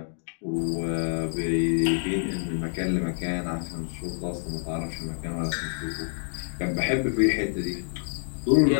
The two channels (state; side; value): silent; right; digital silence